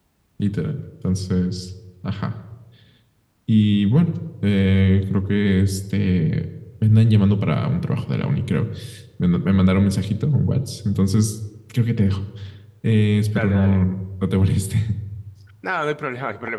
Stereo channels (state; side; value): identical; both; correlation 1.00